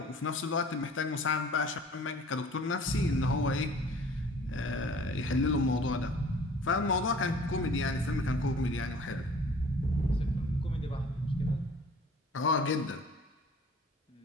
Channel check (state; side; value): normal; both; correlation 0.49